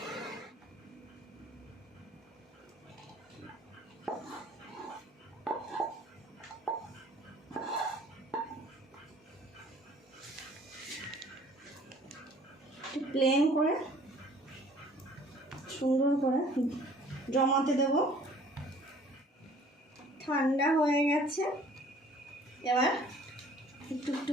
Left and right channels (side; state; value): both; normal; correlation 0.54